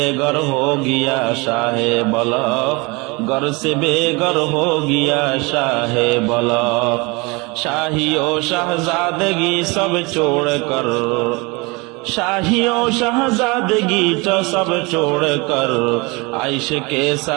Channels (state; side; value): quieter; left; 26.7 dB